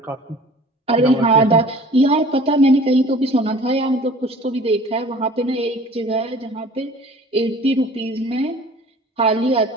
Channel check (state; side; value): normal; both; correlation 0.47